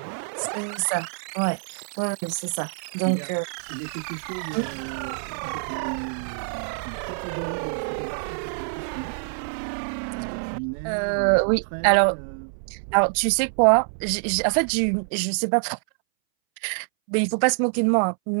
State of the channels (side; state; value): left; silent; 61 dB below the other